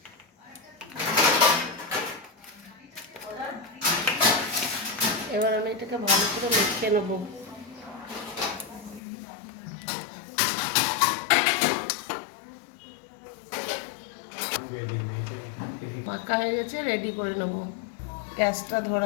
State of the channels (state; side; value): drops out; right; at 9.0 s